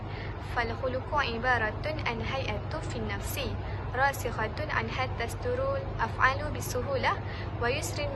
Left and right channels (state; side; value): identical; both; correlation 1.00